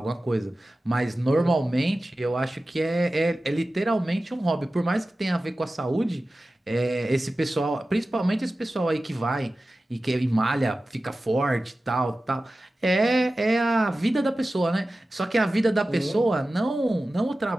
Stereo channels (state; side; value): normal; both; correlation 0.95